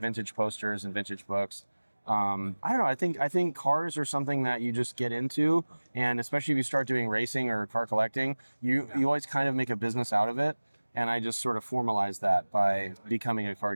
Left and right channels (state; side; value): inverted; both; correlation -1.00